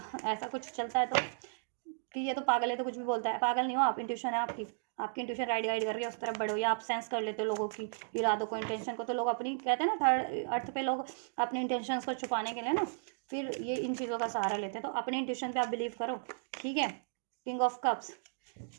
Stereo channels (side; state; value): left; silent; digital silence